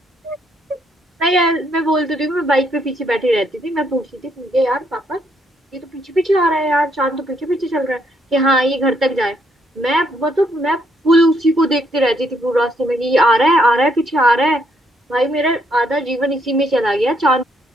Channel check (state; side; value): normal; both; correlation 0.73